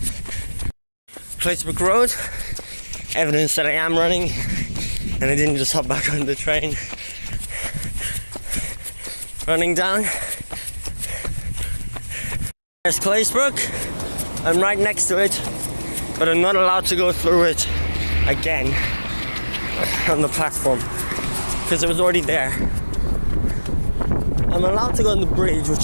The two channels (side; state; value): both; inverted; correlation -1.00